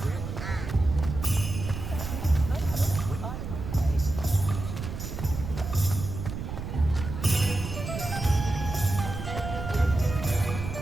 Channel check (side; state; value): right; noise; rumble, 7 dB below the sound